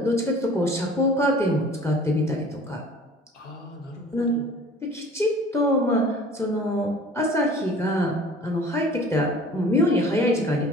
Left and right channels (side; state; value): both; normal; correlation 0.47